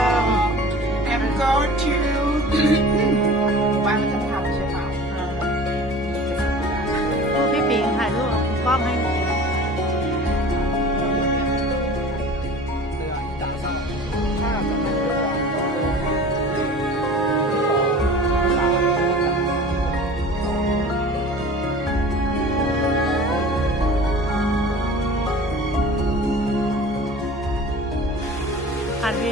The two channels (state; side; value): normal; both; correlation 0.41